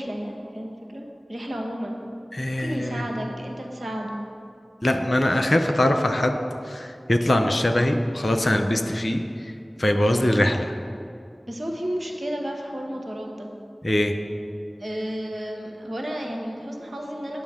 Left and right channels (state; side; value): normal; both; correlation 0.97